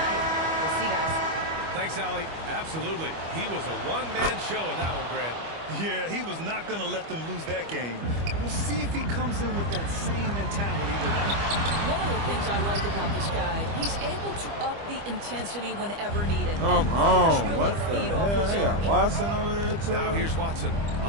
We'll see, guys. Thanks, Allie. Absolutely. He was a one-man show in that one, Grant. Yeah, he was not going to let them lose that game. We'll see if he comes in with that same mentality tonight. One of the things I like about this guy, he's able to up the intensity whenever needed. Come on. What the hell? They got Watson over there, too. Now here's Watson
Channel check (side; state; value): left; late; 25 ms